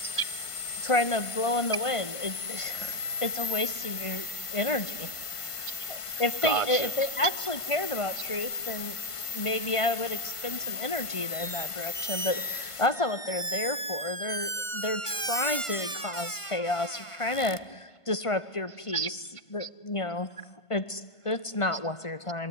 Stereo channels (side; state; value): right; late; 1.5 ms